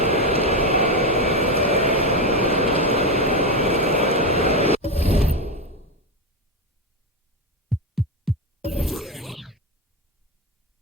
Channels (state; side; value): normal; both; correlation 0.12